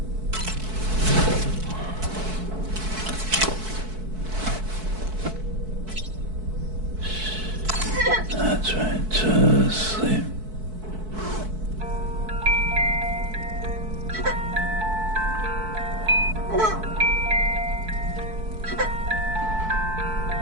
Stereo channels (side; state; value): left; late; 4.6 ms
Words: That's right, just sleep.